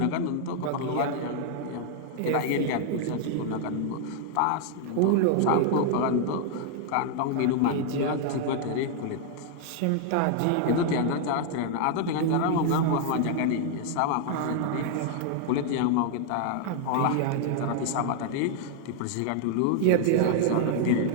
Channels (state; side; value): different; both; correlation 0.00